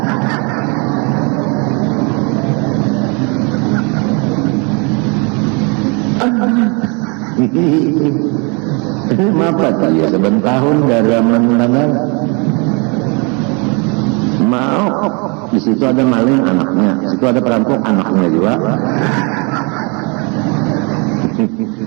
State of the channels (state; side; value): quieter; left; 31.9 dB